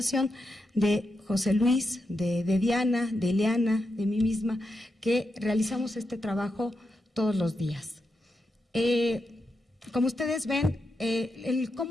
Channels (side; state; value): both; normal; correlation 0.86